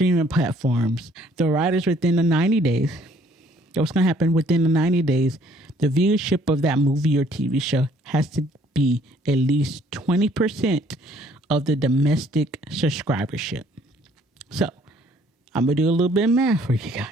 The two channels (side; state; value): both; normal; correlation 0.61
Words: platforms, the writers within the 90 days, what's going to happen within the 90 days, the viewership of that movie or TV show has to be at least 20% of the domestic subscribership. So I'm going to do a little bit of math for you